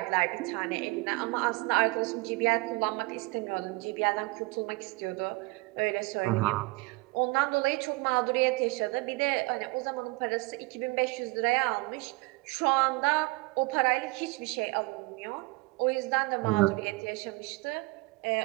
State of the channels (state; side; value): quieter; left; 24.2 dB